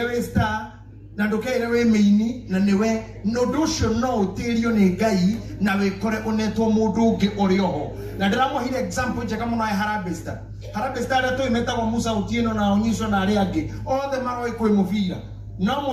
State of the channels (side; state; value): both; identical; correlation 1.00